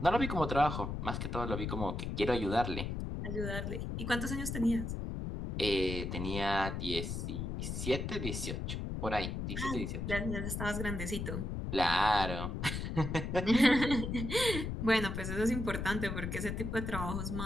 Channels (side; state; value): left; noise; rumble, 3 dB below the sound